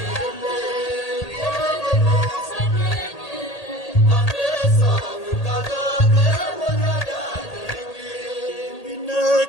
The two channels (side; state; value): right; late; 1.8 ms